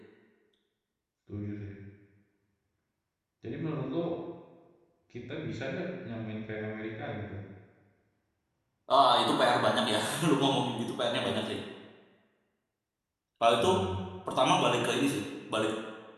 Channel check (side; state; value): both; identical; correlation 1.00